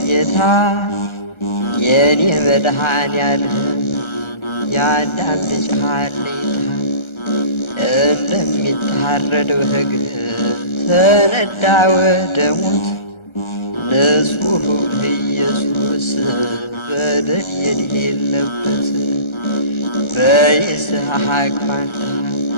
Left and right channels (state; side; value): late; right; 1.3 ms